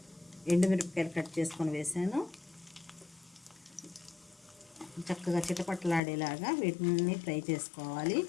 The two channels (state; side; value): drops out; right; at 6.0 s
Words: ఎండుమిరపకాయలు కట్ చేసుకొని వేసాను. చక్కగా చిటపట్లాడేలాగా వీటిని ఫ్రై చేసుకోవాలి.